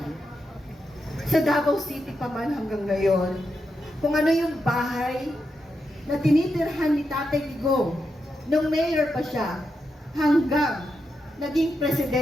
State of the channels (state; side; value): normal; both; correlation 0.85